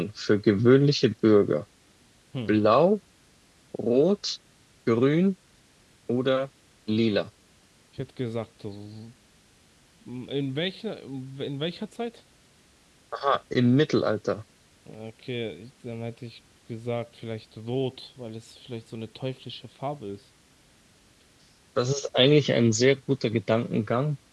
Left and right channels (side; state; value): both; identical; correlation 1.00